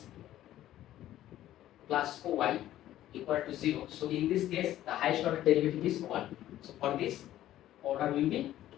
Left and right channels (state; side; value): quieter; right; 13.3 dB